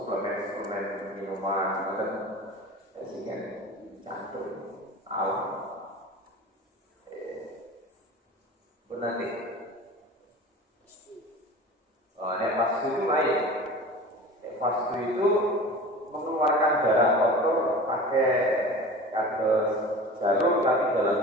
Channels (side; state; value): both; normal; correlation 0.37